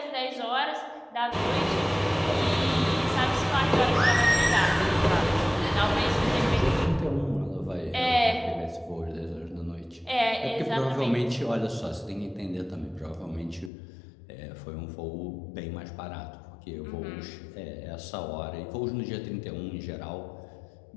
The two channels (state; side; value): drops out; right; at 13.7 s